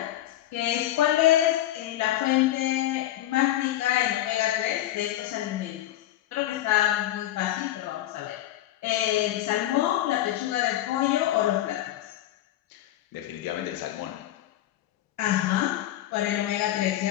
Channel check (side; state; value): right; quieter; 13.7 dB